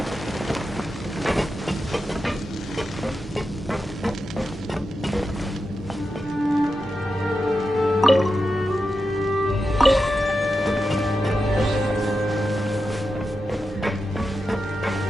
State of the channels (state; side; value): normal; both; correlation 0.89